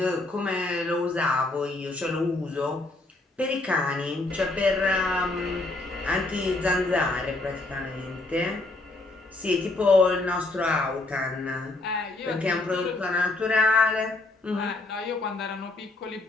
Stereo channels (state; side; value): quieter; right; 3.0 dB